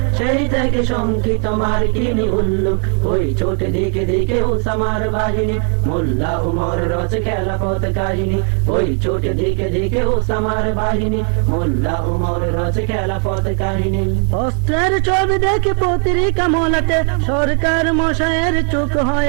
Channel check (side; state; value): left; quieter; 39.4 dB